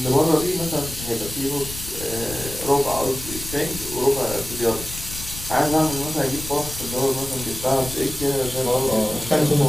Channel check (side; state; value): left; noise; rumble, 11 dB below the sound